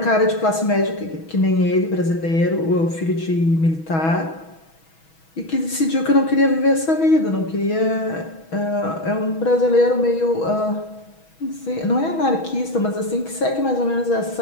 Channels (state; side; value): late; right; 6.2 ms